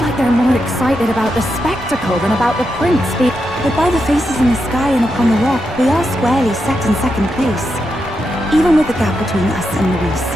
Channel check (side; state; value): both; normal; correlation 0.85